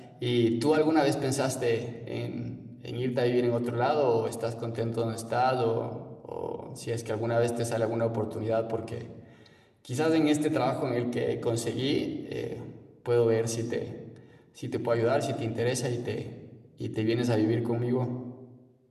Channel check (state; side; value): identical; both; correlation 1.00